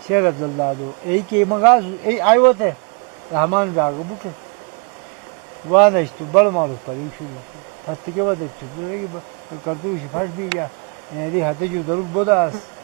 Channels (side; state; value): left; quieter; 34.9 dB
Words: शेर अब्दुल्ला दो एक के मंगा ए आयो थे रहमान जागो बुक वाह नहीं तो बड़ा मालूम पर शुरू फट के बाद पूरे की करतू फट भी गया ये हाथे जो दरुक बोदास